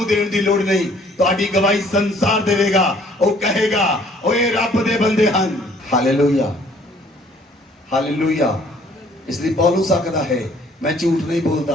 ਦੇਣ ਦੀ ਲੋੜ ਨਹੀਂ, ਤੁਹਾਡੀ ਗਵਾਹੀ ਸੰਸਾਰ ਦੇਵੇਗਾ। ਉਹ ਕਹੇਗਾ ਓਏ ਰੱਬ ਦੇ ਬੰਦੇ ਹਨ। Hallelujah, hallelujah. ਇਸ ਲਈ ਪੌਲੁਸ ਆਖਦਾ ਹੈ ਮੈਂ ਝੂਠ ਨਹੀਂ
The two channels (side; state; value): both; normal; correlation 0.59